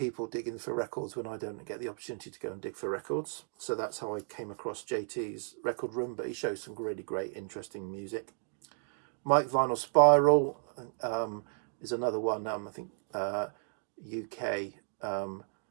digging for records when I don't get the opportunity to go and dig for records. So that's how I came across JT's record room, but he shows some really great interesting music. Mike Vinyl Spiral is another one. I think UK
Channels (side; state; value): left; silent; digital silence